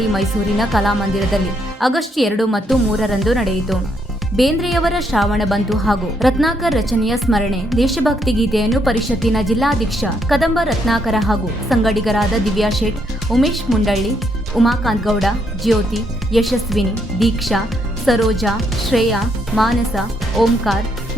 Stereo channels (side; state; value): both; normal; correlation 0.74